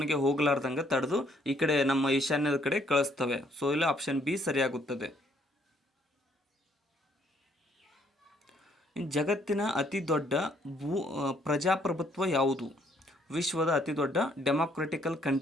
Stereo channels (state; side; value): normal; both; correlation 0.67